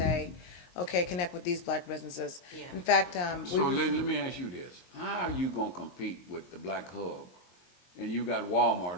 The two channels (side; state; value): right; late; 22 ms